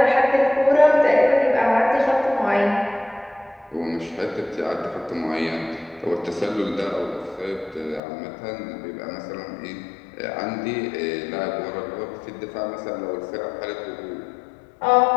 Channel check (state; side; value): drops out; right; at 8.0 s